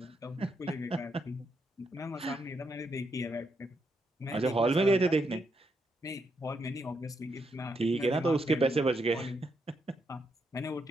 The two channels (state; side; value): normal; both; correlation 0.79